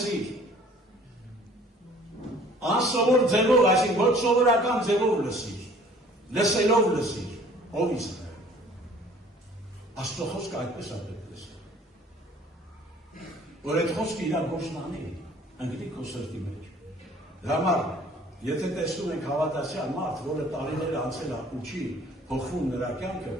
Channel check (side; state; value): both; normal; correlation 0.53